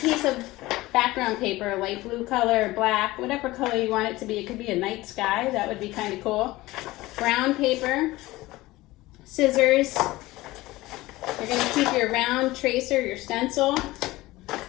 of background paper, light blue color, black, whatever color you want it to be. It could be a night sky. That would be kind of cool. Brown paper, scissors. You're going to keep your round tracer, your stencil,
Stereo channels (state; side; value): quieter; right; 18.8 dB